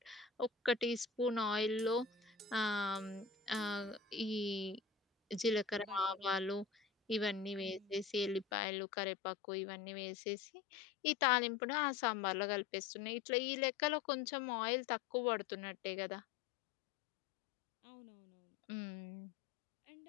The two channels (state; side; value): drops out; right; at 8.5 s